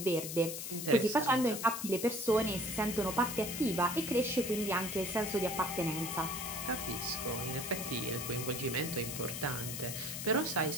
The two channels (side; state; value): left; noise; hiss, 6 dB below the sound